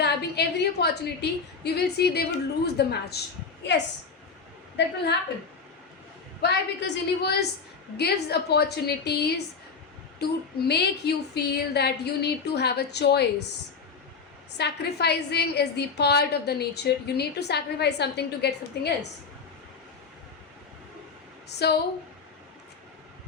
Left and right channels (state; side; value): quieter; right; 5.2 dB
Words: every opportunity, you will see they would lose the match. Yes, that will happen. Why? Because universe gives opportunities to make you feel that you need to have a choice. Sacrificing is the part of the nature. You need to sacrifice something to get something else. So